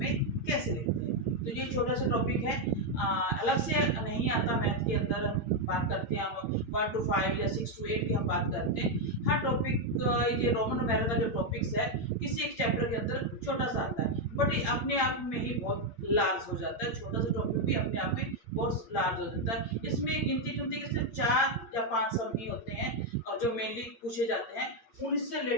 कैसे लिखते हैं। तो ये छोटा सा टॉपिक है, अलग से नहीं आता मैथ के अंदर। हम बात करते हैं, हम 1 to 5 या 6 to 8 की हम बात करते हैं। हर टॉपिक, ये रोमन न्यूमेरल का जो टॉपिक्स है किसी एक चैप्टर के अंदर छोटा सा आता है, बट ये अपने आप में ही बहुत लार्ज हो जाता है। छोटा सा टॉपिक भी अपने आप में बहुत लार्ज हो जाता है। इसमें गिनती चुनती के सिर्फ 4 या 5 सम ही होते हैं और जो मेनली पूछे जाते हैं उनसे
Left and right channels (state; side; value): late; right; 8.7 ms